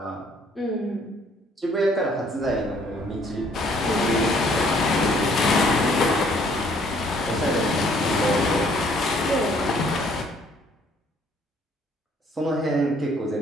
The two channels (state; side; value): normal; both; correlation 0.62